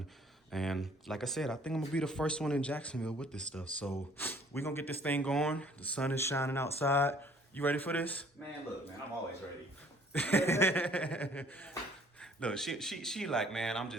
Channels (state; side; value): normal; both; correlation 0.57